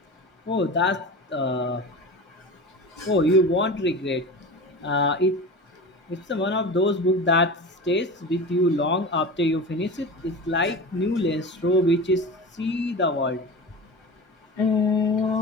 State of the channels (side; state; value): both; normal; correlation 0.30